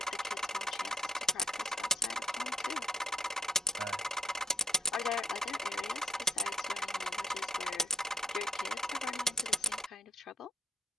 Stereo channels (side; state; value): both; normal; correlation 0.61